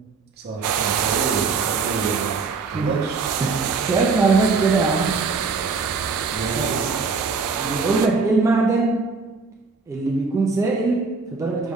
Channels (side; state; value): left; quieter; 4.5 dB